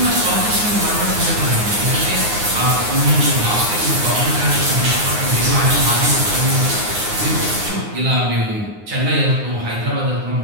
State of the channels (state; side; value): late; left; 9.5 ms